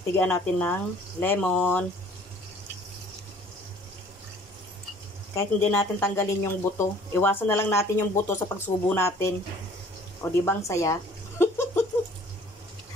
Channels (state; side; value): normal; both; correlation 0.54